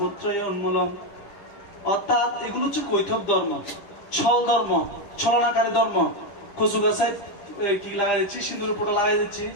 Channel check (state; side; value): late; right; 9.9 ms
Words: উন্মূলম। অর্থাৎ এগুলো হচ্ছে কৈতব ধর্ম, ছল ধর্ম, ছলনাকারী ধর্ম। কচু গাছায় কি লাগাই দিচ্ছি, সিঁদুর পোটা লাগাই দিচ্ছি,